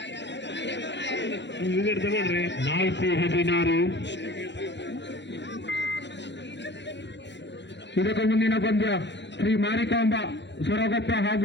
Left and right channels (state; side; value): late; right; 0.52 ms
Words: ವಿಕೆಟ್ ತಗೊಳ್ರಿ. 4-16. ಇದಕ್ಕೂ ಮುಂದಿನ ಪಂದ್ಯ ಶ್ರೀ ಮಾರಿಕಾಂಬ ಸೊರಗೊಪ್ಪ